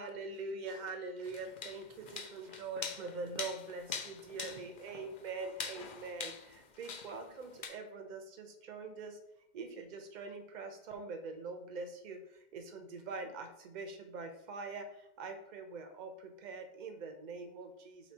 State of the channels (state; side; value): late; left; 2.1 ms